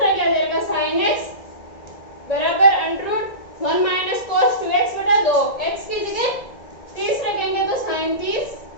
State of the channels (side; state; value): right; late; 1.9 ms